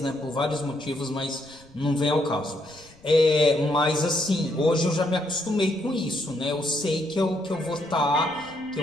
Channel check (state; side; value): noise; left; rumble, 28 dB below the sound